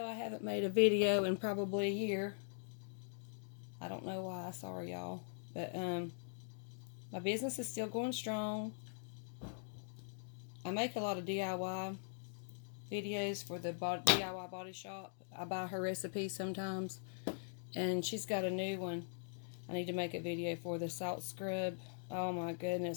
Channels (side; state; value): right; silent; digital silence